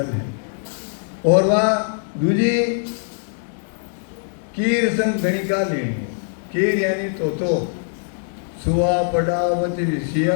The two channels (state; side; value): silent; right; 64 dB below the other